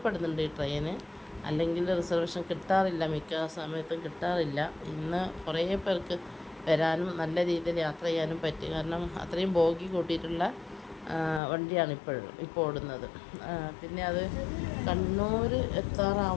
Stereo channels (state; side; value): drops out; right; at 11.4 s